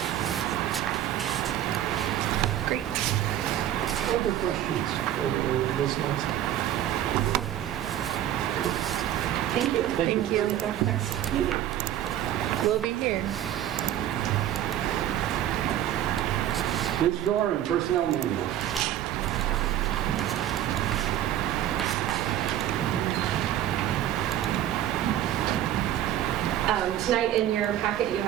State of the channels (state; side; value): quieter; left; 11.8 dB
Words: Great. Other questions for Ms. Nelson? Thank you. Thank you. We'll be here. Ms. Doran, Personnel Manual. Tonight in your packet you